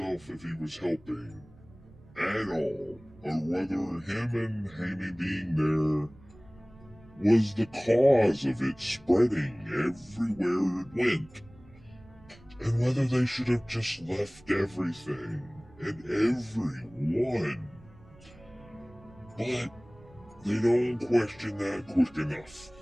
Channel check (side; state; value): right; noise; rumble, 24 dB below the sound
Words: if he was helping at all, or whether him and Hammy being there was the cause of it spreading everywhere it went, and whether they should have just left everything and everyone. But they don't question that quick enough.